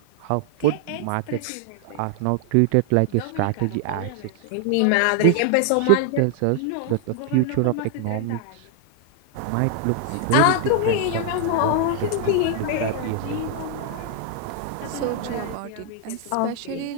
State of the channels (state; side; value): different; both; correlation 0.00